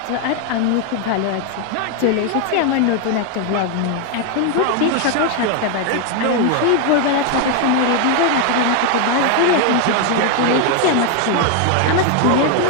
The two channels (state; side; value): different; both; correlation 0.01